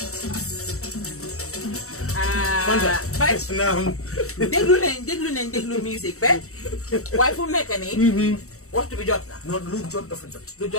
déglu musique ba waaye fu mu nekk nii waxtu bi jot na. non lu jot dafa jot. lu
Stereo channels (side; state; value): right; late; 0.64 ms